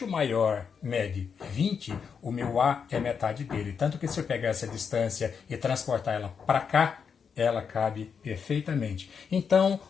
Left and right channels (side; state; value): right; quieter; 6.5 dB